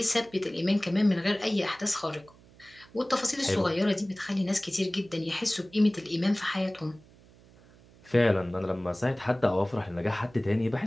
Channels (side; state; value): right; noise; hum, 26 dB below the sound